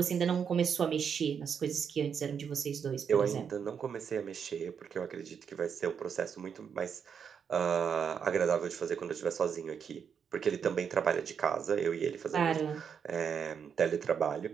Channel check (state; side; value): quieter; left; 7.1 dB